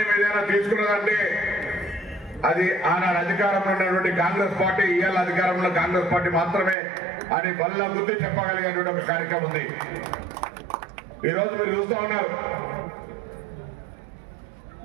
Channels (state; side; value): drops out; left; at 6.8 s